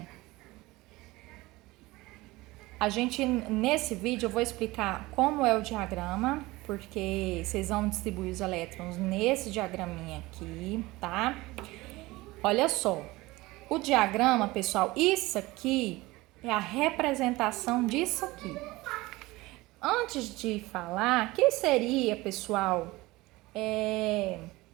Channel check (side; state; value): left; quieter; 20.4 dB